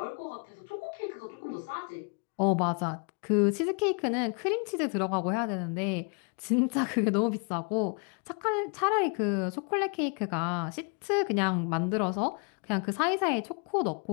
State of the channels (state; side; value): quieter; right; 38.6 dB